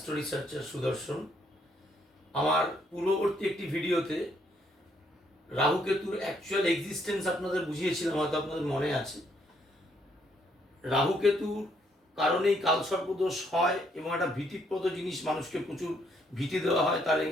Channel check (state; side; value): normal; both; correlation 0.71